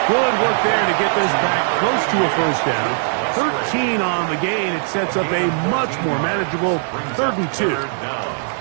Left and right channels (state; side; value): silent; left; digital silence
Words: Good work there to get this back close to a first down. 13 on the gain. It sets up a much more manageable 3rd and 2.